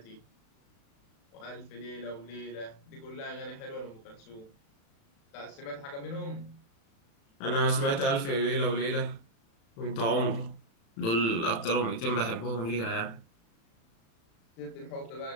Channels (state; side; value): late; right; 36 ms